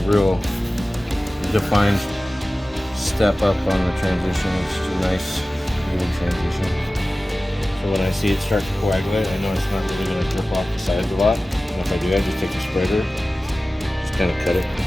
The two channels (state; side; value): normal; both; correlation 0.96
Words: real defined step up on the transition. It's just a nice even transition. So when I see it start to coagulate, I know it's not really going to drip off the sides a lot. And if I do, I just take the spreader, just kind of cut it.